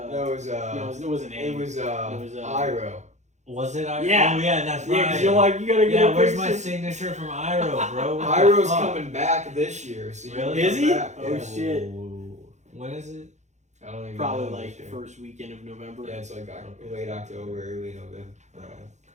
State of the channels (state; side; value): late; left; 0.34 ms